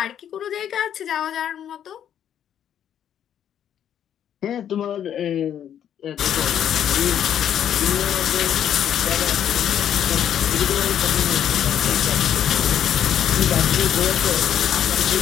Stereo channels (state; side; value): quieter; right; 9.7 dB